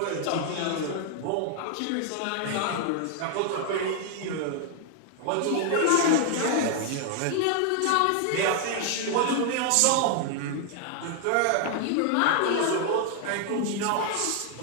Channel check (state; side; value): different; both; correlation 0.00